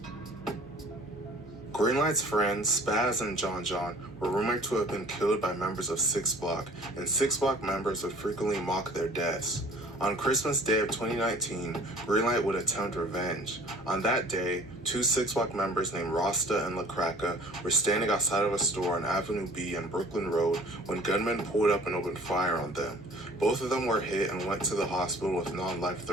Greenlight's friends, Spaz and John, were rumored to have been killed by members of 6 Block, and 6 Block members would frequently mock their deaths. On Christmas Day of 2019, Greenlight would attempt revenge. On that day, 2 6 Block members named Rasta and LaCracka were standing outside of a store on Avenue B and Brooklyn Road when gunmen pulled up and opened fire on them. Both of them were hit and went to the hospital with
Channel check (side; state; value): right; noise; hum, 24 dB below the sound